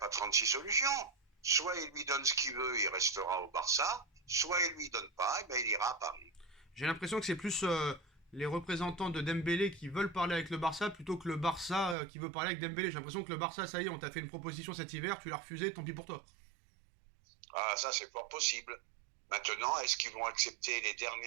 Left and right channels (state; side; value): drops out; left; at 12.0 s